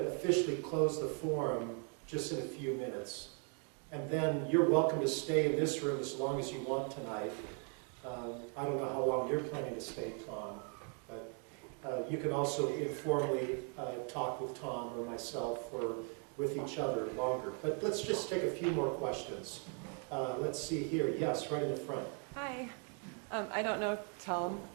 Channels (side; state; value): left; quieter; 38.3 dB